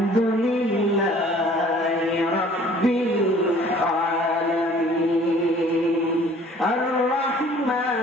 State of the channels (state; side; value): normal; both; correlation 0.53